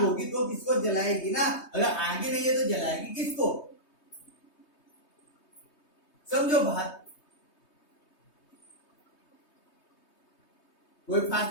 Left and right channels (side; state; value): right; late; 3.2 ms